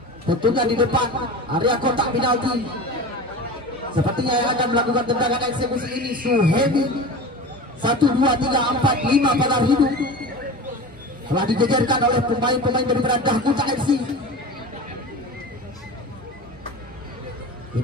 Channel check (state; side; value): normal; both; correlation 0.33